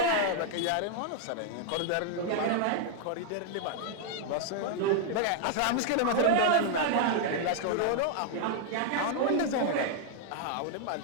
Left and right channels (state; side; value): different; both; correlation -0.01